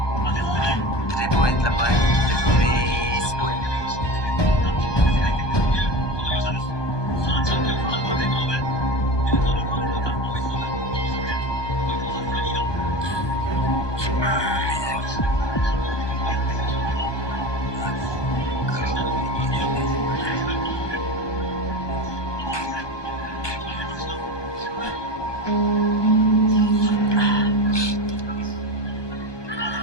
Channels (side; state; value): right; late; 1.2 ms